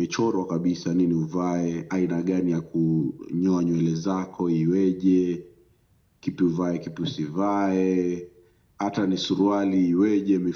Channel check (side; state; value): both; identical; correlation 1.00